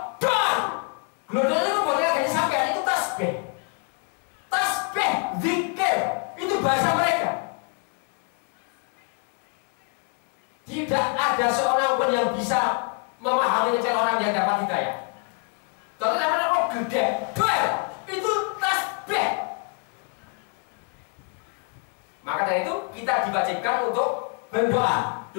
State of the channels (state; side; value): quieter; right; 37.5 dB